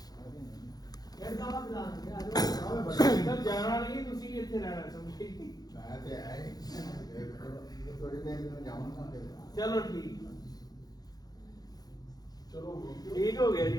جانا نہیں، تسی اتنے رہنا سمجھے. چلو ٹھیک، چلو ٹھیک ہو گیا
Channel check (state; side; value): late; right; 0.19 ms